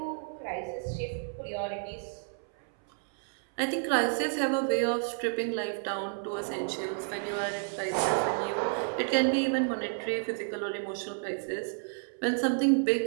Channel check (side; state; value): left; silent; 57 dB below the other